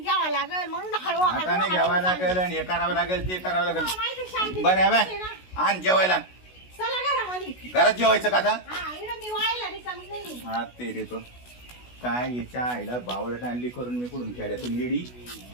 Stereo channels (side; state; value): right; late; 16 ms